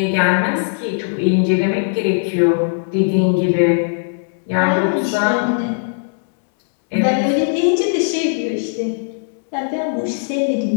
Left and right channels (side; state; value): right; silent; 67 dB below the other